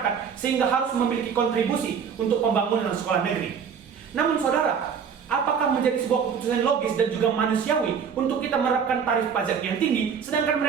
sehingga harus memiliki kontribusi untuk pembangunan sekolah negeri. Namun saudara, apakah menjadi sebuah keputusan logis dan juga manusiawi untuk kita menerapkan tarif pajak yang tinggi sedangkan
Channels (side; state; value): left; quieter; 6.9 dB